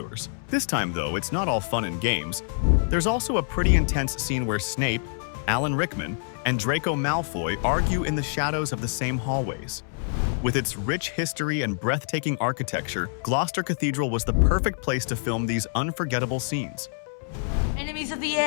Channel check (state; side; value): silent; right; 61 dB below the other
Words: This time, though, it's not all fun and games. There's also a pretty intense scene where Snape, Alan Rickman, and Draco Malfoy argue in the shadows of the same hallways. With its rich history and breathtaking architecture, Gloucester Cathedral was the perfect place to film these unforgettable scenes. Enemies of the